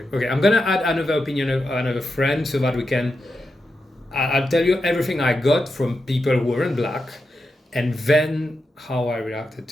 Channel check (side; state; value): both; normal; correlation 0.88